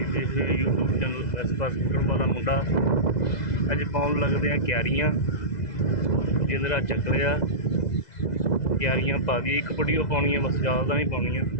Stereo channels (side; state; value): right; late; 2.0 ms